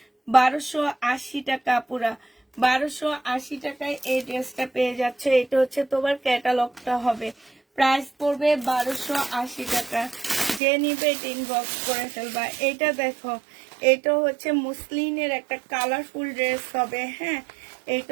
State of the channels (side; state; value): left; drops out; at 10.6 s